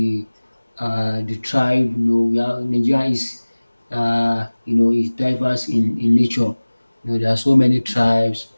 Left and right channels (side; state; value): both; inverted; correlation -1.00